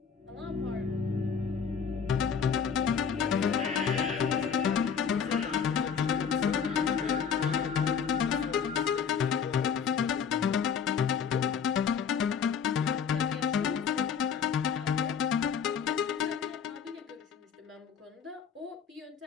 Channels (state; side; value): quieter; right; 6.8 dB